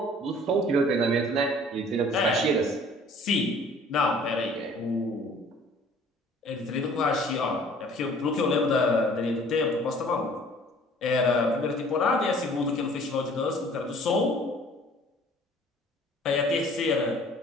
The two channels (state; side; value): normal; both; correlation 0.52